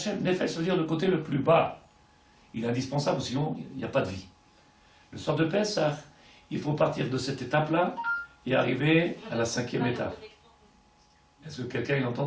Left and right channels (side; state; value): both; identical; correlation 1.00